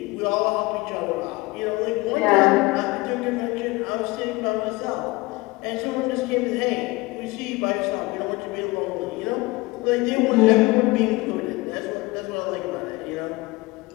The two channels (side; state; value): right; quieter; 21.9 dB